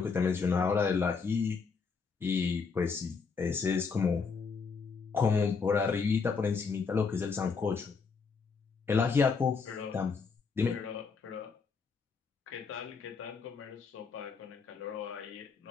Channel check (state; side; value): quieter; right; 5.2 dB